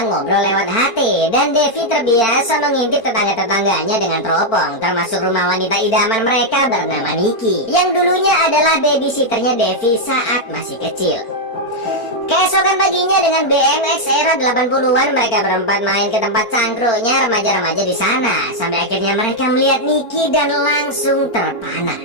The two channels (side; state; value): right; late; 4.4 ms